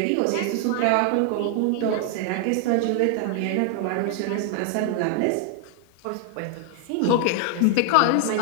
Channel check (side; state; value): both; different; correlation 0.00